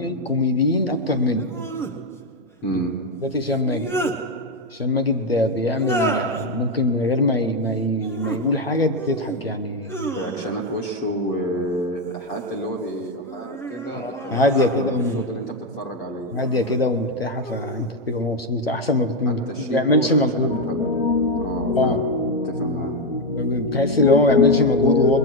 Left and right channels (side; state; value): both; normal; correlation 0.06